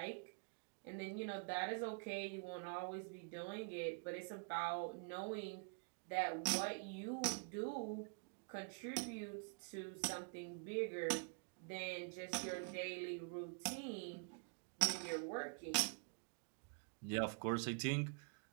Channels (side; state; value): left; quieter; 34.2 dB